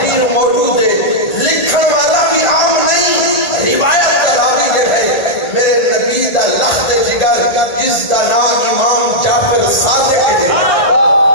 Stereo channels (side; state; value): right; late; 1.4 ms